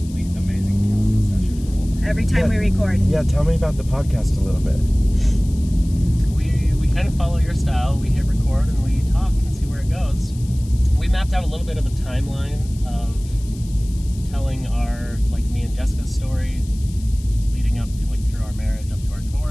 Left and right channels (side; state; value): left; noise; hiss, 22 dB below the sound